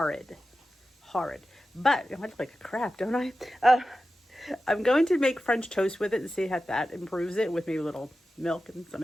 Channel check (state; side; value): normal; both; correlation 0.93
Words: Horrid. But I look like a crap, don't I? I'm going to make French toast with it and see how that improves it with maybe a little milk and some